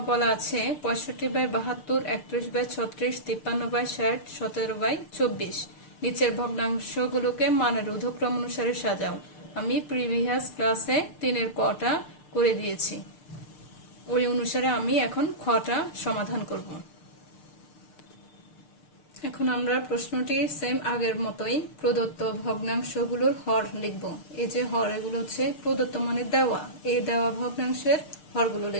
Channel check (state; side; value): late; right; 6.7 ms